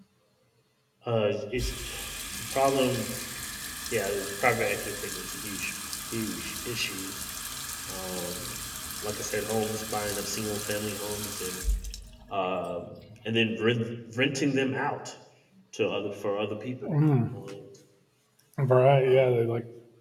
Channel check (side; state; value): both; identical; correlation 1.00